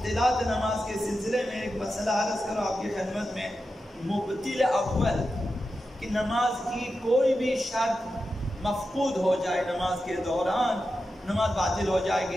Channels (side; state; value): both; normal; correlation 0.90